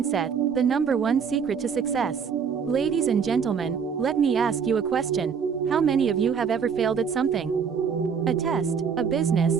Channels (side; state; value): left; quieter; 6.5 dB